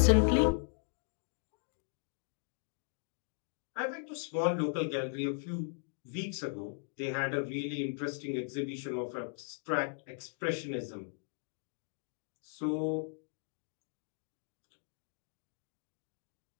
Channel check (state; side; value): silent; right; digital silence